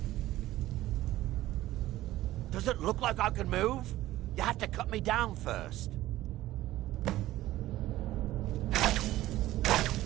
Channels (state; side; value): quieter; left; 15.5 dB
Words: Does it look like I can move? You have to cut me down first.